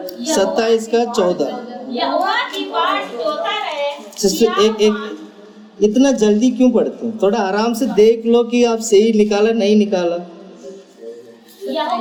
27 का 14। यहोवा की बाट जोता रहे। सिस्टर एक इतना जल्दी क्यों पढ़ते हैं? थोड़ा आराम से देख लो कि आप सही निकाला नहीं निकाला।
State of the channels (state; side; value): identical; both; correlation 1.00